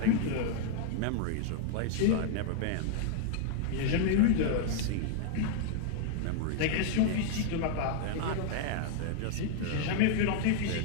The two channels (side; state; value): both; different; correlation 0.00